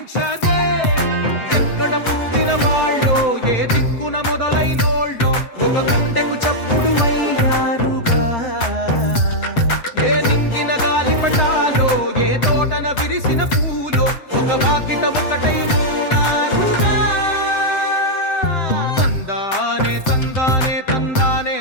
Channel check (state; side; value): late; right; 7.7 ms